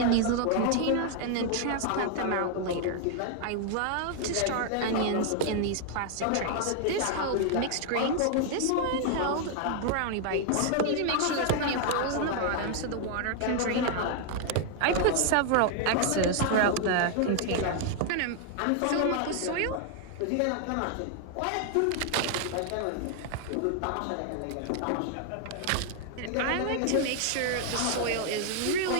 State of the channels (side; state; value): both; different; correlation 0.00